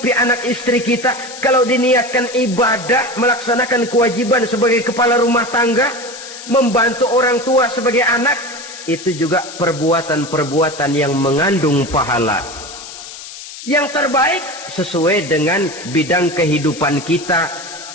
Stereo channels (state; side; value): noise; left; hiss, 13 dB below the sound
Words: anak istri kita. Kalau diniatkan ibadah, melaksanakan kewajiban sebagai kepala rumah tangga, membantu orang tua sebagai anak, itu juga perbuatan-perbuatan yang mengandung pahala. Yang terbaik sesuai dengan bidang kehidupan kita.